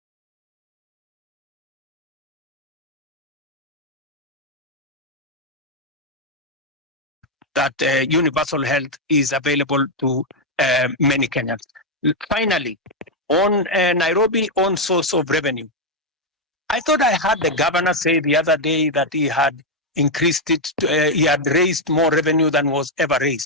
that universal health is available to many Kenyans. Finally, on Nairobi own source of revenue, I thought I heard the governor say the other day that he had increased it, he had raised more revenue than was ever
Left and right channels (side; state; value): both; normal; correlation 0.01